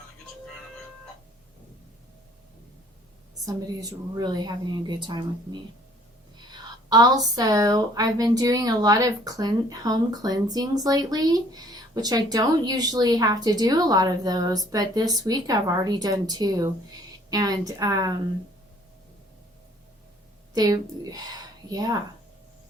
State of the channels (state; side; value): normal; both; correlation 0.58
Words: Somebody's really having a good time with me. Also, I've been doing a lot of home cleansings lately which I don't usually have to do a lot of those, but this week I've already done 2. And yeah,